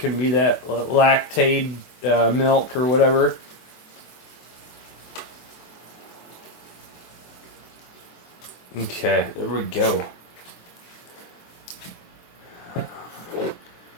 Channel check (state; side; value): late; right; 24 ms